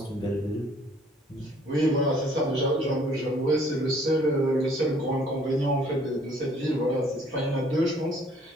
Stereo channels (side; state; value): both; normal; correlation 0.59